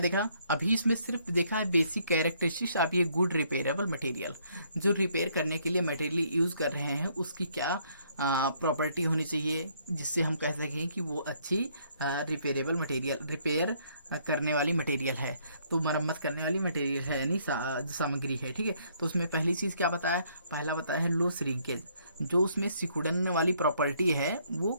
अभी इसमें सिर्फ देखा है बेसिक कैरेक्टरिस्टिक्स ऑफ ये गुड रिपेयरेबल मटेरियल। जो रिपेयर करने के लिए मटेरियल यूज़ कर रहे हैं उसकी क्या प्रॉपर्टी होनी चाहिए जिससे हम कह सकें कि वो अच्छी रिपेयरेबल मटेरियल, रिपेयर करने वाली मटेरियल है, तो मरम्मत करने वाली मटेरियल है, यानी सामग्री है। ठीक है, तो उसमें पहली चीज़ क्या बताया, पहला बताया है लो श्रिंकेज, जो उसमें सिकुड़न वाली प्रॉपर्टी है वो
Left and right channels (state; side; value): inverted; both; correlation -0.67